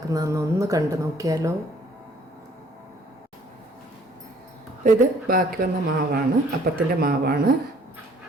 ഒന്ന് കണ്ടു നോക്കിയാലോ. ഇത് ബാക്കി വന്ന മാവാണ്, അപ്പത്തിൻ്റെ മാവാണ്.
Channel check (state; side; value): normal; both; correlation 0.59